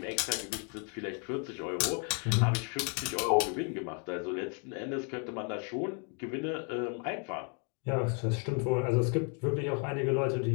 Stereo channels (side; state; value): right; quieter; 38.6 dB